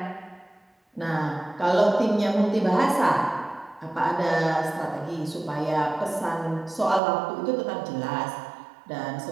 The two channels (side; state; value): left; drops out; at 7.0 s